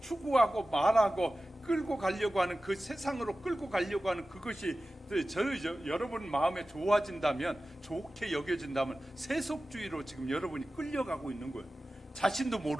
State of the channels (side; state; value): both; normal; correlation 0.95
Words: 말하고 끌고 가려고 하는 그 세상으로 끌고 가려고 하는 그것이 여러분 마음에 좋아진다면, 좋게 여겨진다면 세속주의로 지금 여러분이 끌려가고 있는 거예요. 자신도